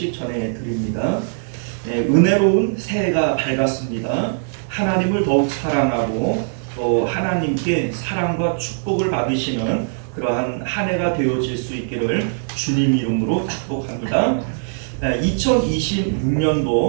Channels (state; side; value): silent; left; digital silence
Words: 전해드립니다. 은혜로운 새해가 밝았습니다. 하나님을 더욱 사랑하고 또 하나님께 사랑과 축복을 받으시는 그러한 한 해가 되어질 수 있기를 주님 이름으로 축복합니다.